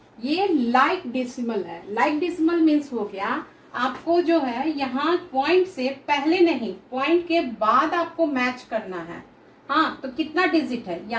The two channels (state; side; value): identical; both; correlation 1.00